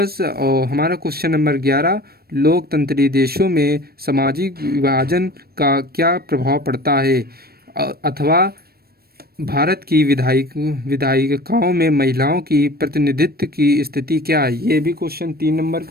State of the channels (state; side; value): late; left; 0.45 ms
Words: और हमारा क्वेश्चन नंबर 11, लोकतंत्री देशों में सामाजिक विभाजन का क्या प्रभाव पड़ता है, अथवा भारत की विधायिकाओं में महिलाओं की प्रतिनिधित्व की स्थिति क्या है। ये भी क्वेश्चन 3 नंबर